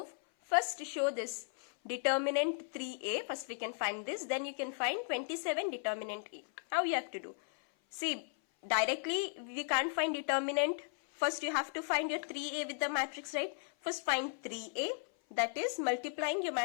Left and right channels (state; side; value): silent; right; 54 dB below the other